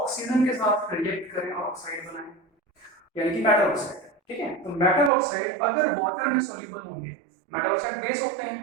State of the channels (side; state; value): left; drops out; at 5.1 s